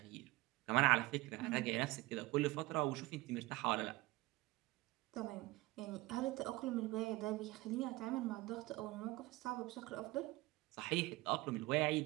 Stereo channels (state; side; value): quieter; left; 20.5 dB